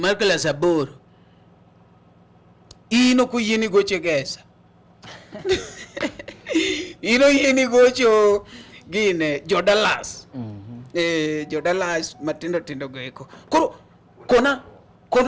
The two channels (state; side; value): identical; both; correlation 1.00